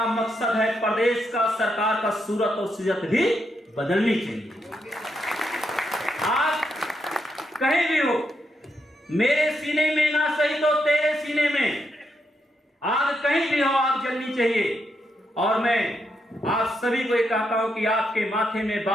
मकसद है प्रदेश का, सरकार का सूरत और सीरत भी बदलनी चाहिए। आप कहीं भी हो, मेरे सीने में ना सही तो तेरे सीने में आग कहीं भी हो, आग जलनी चाहिए। और मैं आप सभी को ये कहता हूं कि आपके माथे में,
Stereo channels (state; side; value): normal; both; correlation 0.81